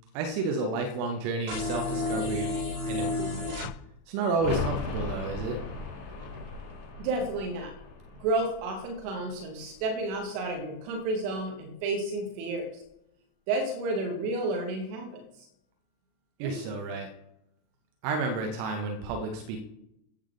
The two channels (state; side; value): late; left; 36 ms